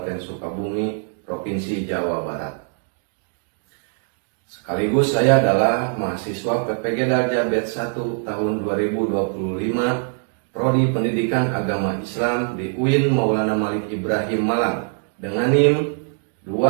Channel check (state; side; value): silent; left; 57 dB below the other